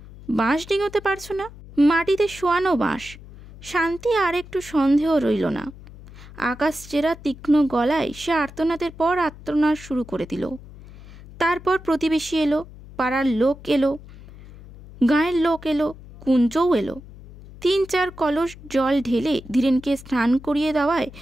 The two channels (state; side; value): noise; left; hum, 18 dB below the sound